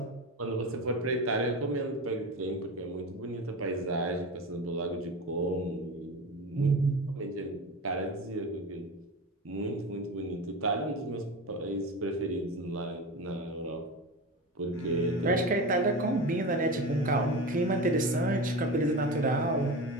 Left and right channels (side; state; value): both; normal; correlation 0.27